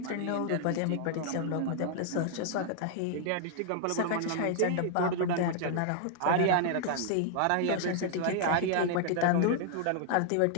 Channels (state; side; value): different; both; correlation -0.01